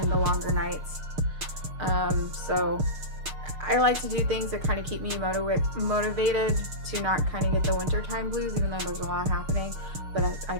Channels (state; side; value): late; left; 6.5 ms